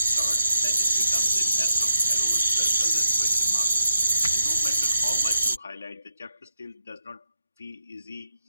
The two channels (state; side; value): inverted; both; correlation -0.82